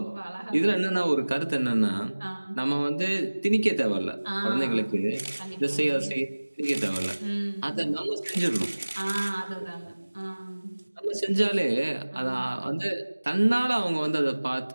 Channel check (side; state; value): both; inverted; correlation -1.00